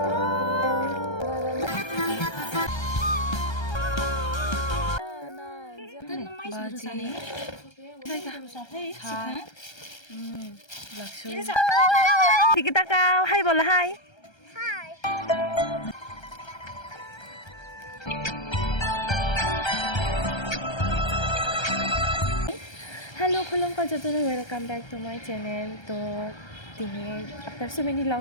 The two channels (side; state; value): right; late; 1.3 ms